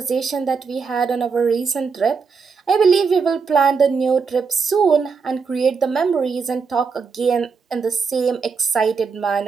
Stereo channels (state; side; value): quieter; left; 5.3 dB